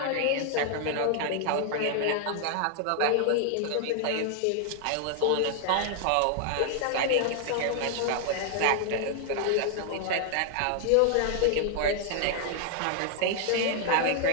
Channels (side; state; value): both; different; correlation 0.00